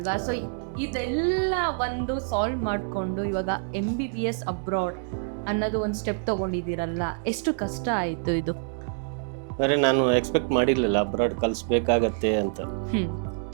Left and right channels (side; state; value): left; silent; 61 dB below the other